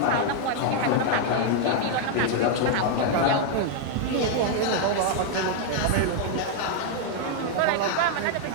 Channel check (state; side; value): different; both; correlation 0.00